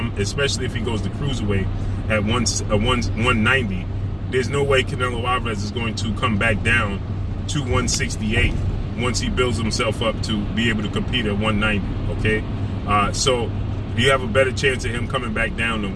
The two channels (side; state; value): both; identical; correlation 1.00